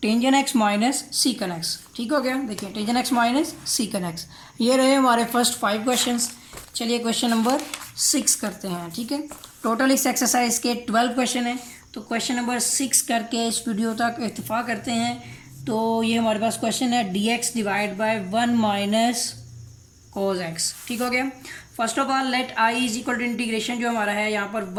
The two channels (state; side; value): identical; both; correlation 1.00